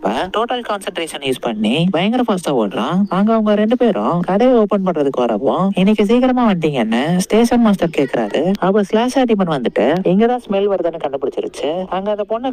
டோட்டல் கான்சென்ட்ரேஷன் யூஸ் பண்ணி பயங்கர ஃபாஸ்டா ஓடுறான். அங்க அவங்க ரெண்டு பேரும் கடையை ஓபன் பண்றதுக்கு வரவும், இன்னைக்கு சீக்கிரமா வந்துட்டீங்கன்னு ஸ்டேஷன் மாஸ்டர் கேக்குறாரு. அப்ப ஸ்லாஷர் டீமன் வந்துட்டு இங்கதான் ஸ்மெல் வருதுன்னு கண்டுபிடிச்சிருச்சு. அங்க அந்த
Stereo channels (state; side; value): identical; both; correlation 1.00